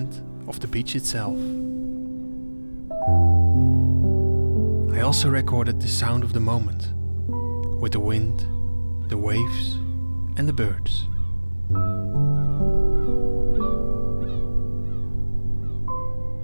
of the beach itself. I also recorded the sound of the moment, with the wind, the waves and the birds.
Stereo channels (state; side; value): inverted; both; correlation -1.00